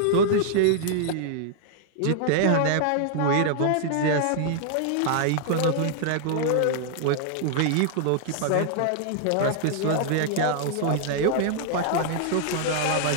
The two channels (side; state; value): both; different; correlation -0.01